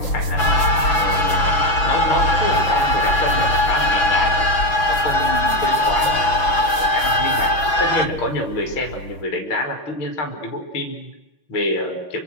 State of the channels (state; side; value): late; right; 6.0 ms